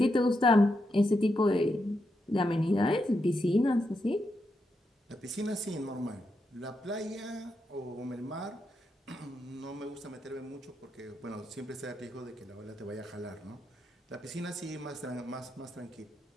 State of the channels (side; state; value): both; normal; correlation 0.83